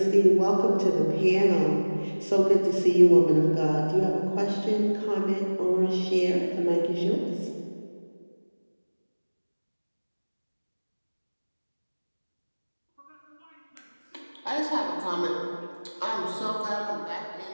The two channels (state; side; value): inverted; both; correlation -1.00